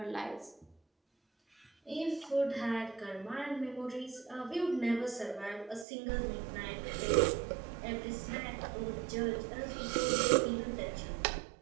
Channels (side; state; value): left; drops out; at 5.9 s